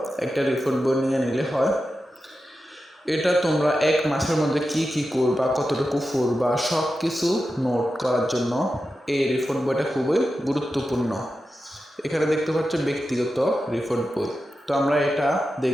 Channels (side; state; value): both; normal; correlation 0.91